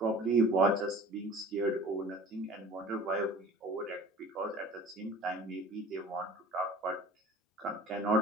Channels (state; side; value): normal; both; correlation 0.44